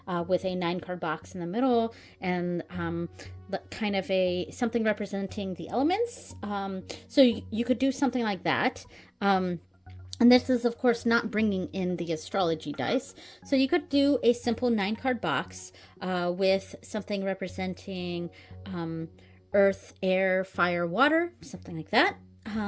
with a 9 card box in the middle and kind of something representing the elements. So you could do something like that. And this is, of course, not bringing in the astrology dice. So you could do a simple 9 card box with something representing earth, air, fire, water, something like that.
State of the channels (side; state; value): both; identical; correlation 1.00